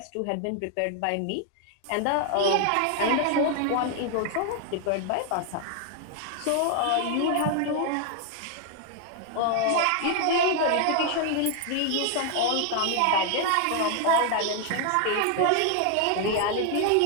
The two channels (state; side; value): different; both; correlation 0.00